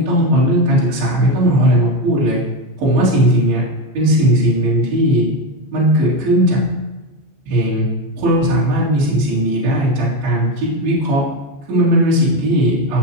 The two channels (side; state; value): left; late; 15 ms